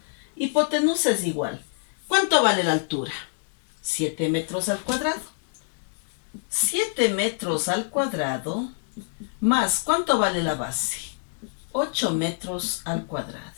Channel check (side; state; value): right; silent; digital silence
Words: Hipotenusa es igual. ¿Cuánto vale la altura? 7 metros al cuadrado. 7 metros al cuadrado más, ¿cuánto vale la base? 8 metros al cuadrado.